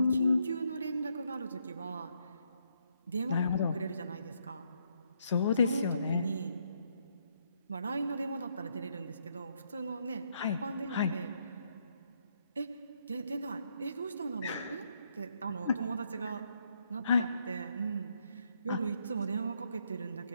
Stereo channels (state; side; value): inverted; both; correlation -0.75